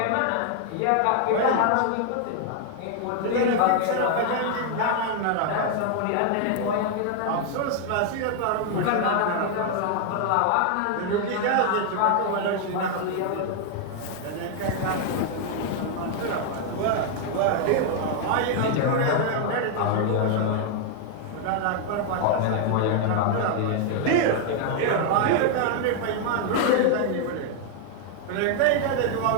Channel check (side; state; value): both; different; correlation 0.00